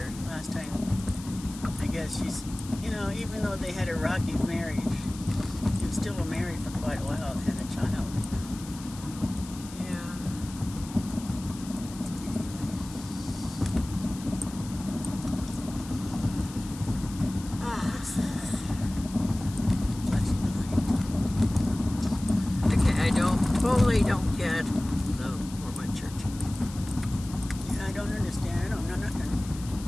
last time. I guess she's, even though they had a rocky marriage, they still were married for quite a while and had a child. Yeah. What's that? Flashing light. Okay, I totally don't get the Mormon church. Yeah, I don't understand. I don't know nothing.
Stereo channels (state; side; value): noise; left; hiss, 16 dB below the sound